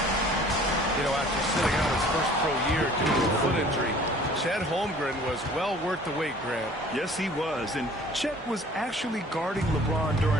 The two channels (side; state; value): both; normal; correlation 0.51